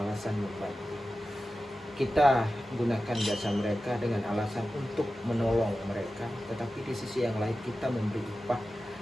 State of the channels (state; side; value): normal; both; correlation 0.94